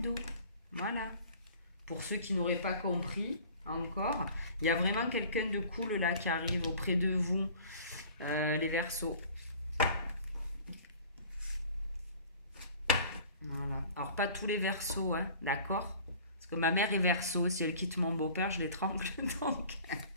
Voilà. Pour ceux qui n'auraient pas compris encore, il y a vraiment quelqu'un de cool là qui arrive auprès de vous, les Verseaux. Voilà. Alors, pas tous les Verseaux, hein, d'accord? Parce que ma mère est Verseau, si elle quitte mon beau-père, je l'étrangle, donc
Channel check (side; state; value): both; inverted; correlation -0.46